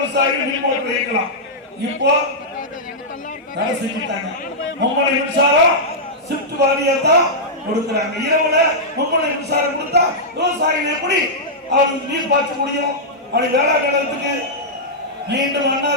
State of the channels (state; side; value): normal; both; correlation -0.10